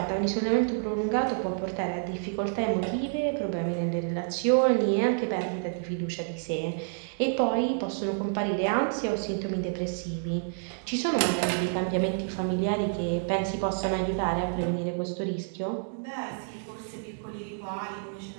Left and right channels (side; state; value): left; silent; digital silence